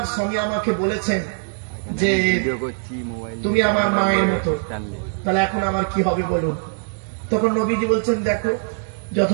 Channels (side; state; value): left; silent; 64 dB below the other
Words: স্বামী আমাকে বলেছেন যে তুমি আমার মায়ের মতো, তাহলে এখন আমার কি হবে বলুন। তখন নবীজি বলছেন দেখো,